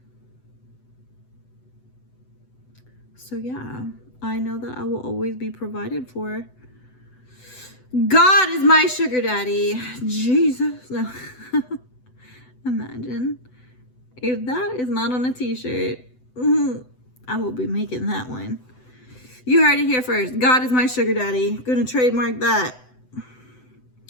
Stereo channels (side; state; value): right; late; 7.9 ms